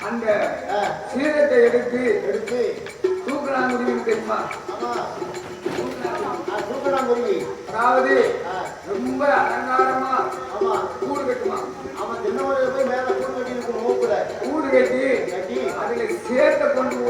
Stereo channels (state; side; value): identical; both; correlation 1.00